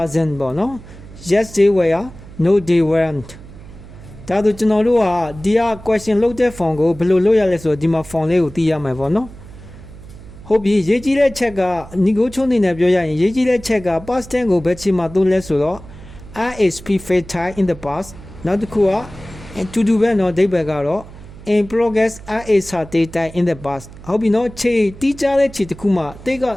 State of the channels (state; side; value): noise; right; hum, 17 dB below the sound